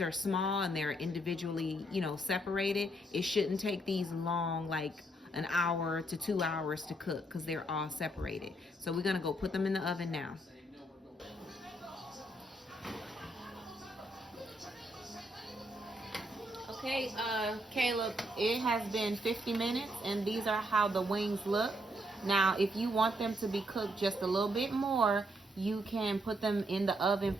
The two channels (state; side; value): normal; both; correlation 0.74